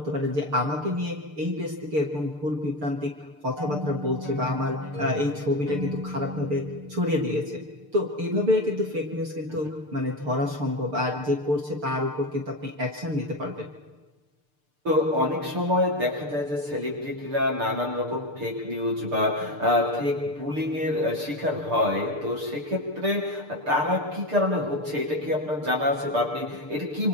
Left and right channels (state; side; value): late; left; 6.7 ms